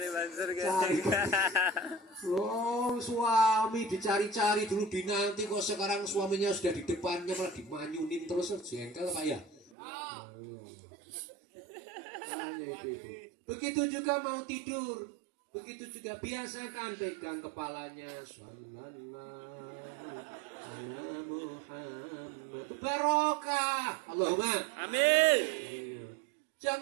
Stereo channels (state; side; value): drops out; left; at 9.7 s